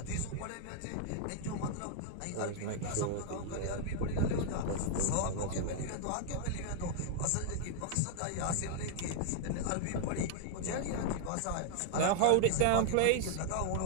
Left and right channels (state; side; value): different; both; correlation 0.00